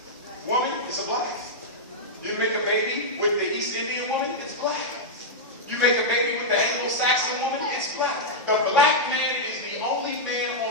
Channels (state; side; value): normal; both; correlation -0.06